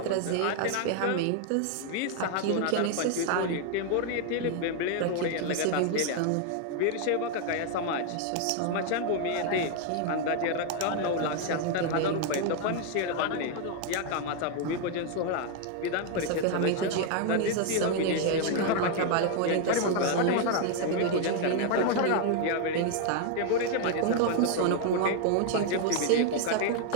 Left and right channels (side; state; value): both; different; correlation 0.00